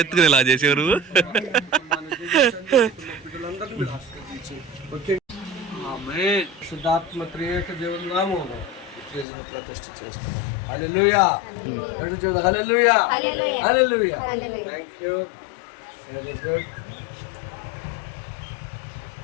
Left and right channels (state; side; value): drops out; right; at 9.2 s